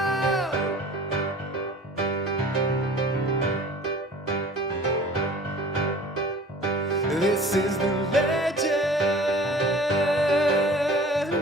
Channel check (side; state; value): both; normal; correlation 0.45